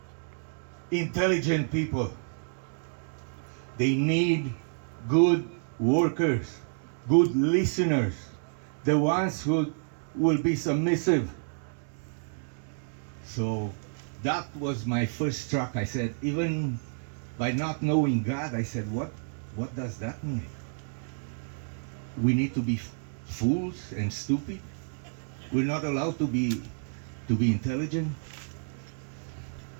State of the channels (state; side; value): silent; left; digital silence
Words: intelligent people. They need good workers, good listeners, the ones who will be submissive." So that was my first shock. I said, even by not knowing God, I said, what does that mean? We need to be fools and stupid? We're not allowed to be intelligent?